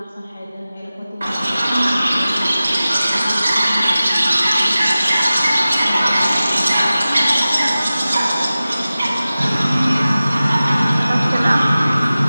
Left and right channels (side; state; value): both; inverted; correlation -0.96